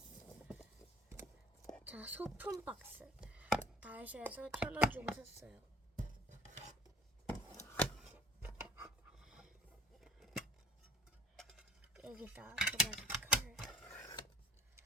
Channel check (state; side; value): normal; both; correlation 0.50